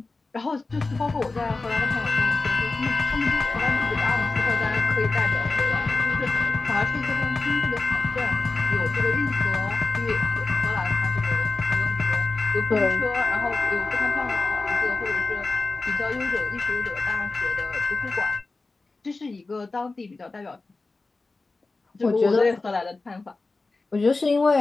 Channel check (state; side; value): quieter; right; 3.6 dB